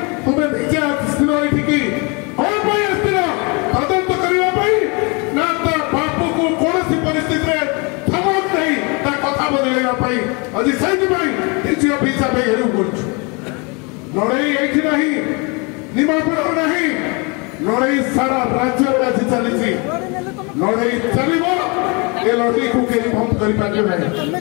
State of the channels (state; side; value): quieter; right; 30.6 dB